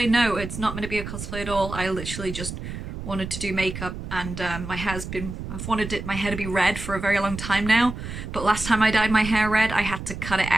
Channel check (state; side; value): noise; right; rumble, 8 dB below the sound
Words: No, it's not meant to be a cosplay at all. I literally just wanted to do makeup, and I've wanted my hair to be red for a very long time now, but last time I dyed my hair red I had to cut it